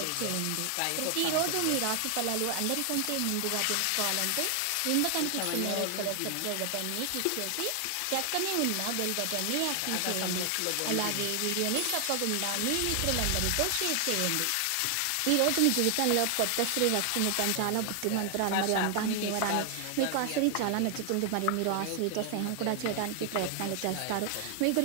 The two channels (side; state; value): both; different; correlation 0.00